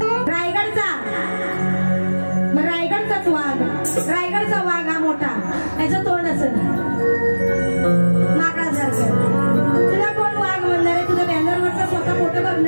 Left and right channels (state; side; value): inverted; both; correlation -1.00